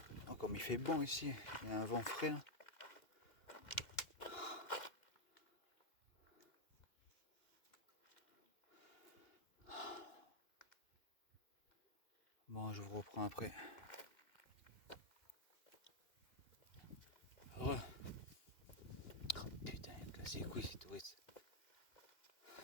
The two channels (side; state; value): right; late; 2.5 ms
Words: Oh, comme il fait bon ici, il y a un vent frais là. Bon, je vous reprends après. Ouais. Oh, putain, il me casse les couilles ces touristes.